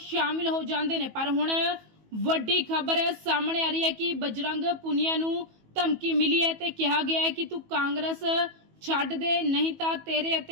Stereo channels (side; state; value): left; late; 18 ms